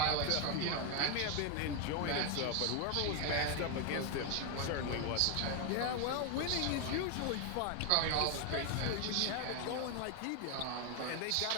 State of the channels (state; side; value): different; both; correlation 0.01